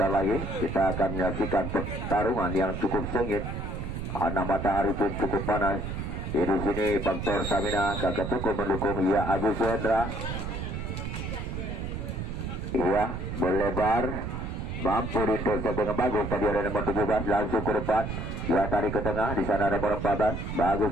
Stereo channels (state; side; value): noise; right; rumble, 5 dB below the sound